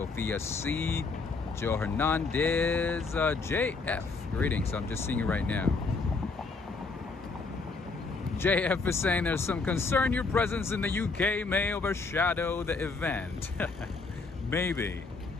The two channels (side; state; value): right; quieter; 4.0 dB